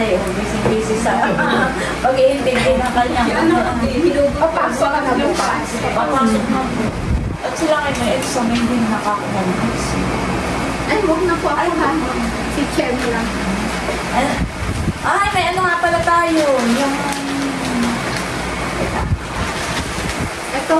busy-busy sa pag-iintindi ng kanyang Papasok ka na bukas. papasok na po. At sila kayo may exam, hindi nakakakumalis. Ay, huwag na po ako ha. Si Chen lang. Ay, may ano nga pala tayo. Yung... Ito,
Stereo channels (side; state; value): both; identical; correlation 1.00